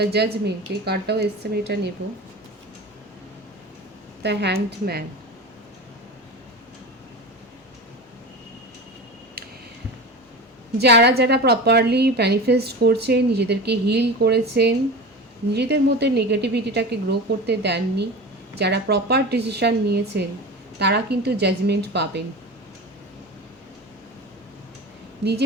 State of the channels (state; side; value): normal; both; correlation 0.30